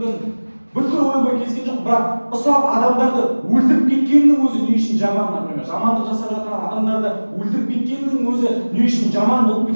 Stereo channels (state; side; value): inverted; both; correlation -1.00